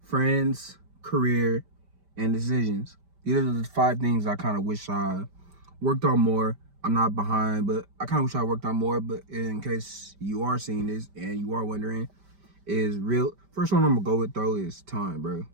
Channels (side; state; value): left; late; 5.1 ms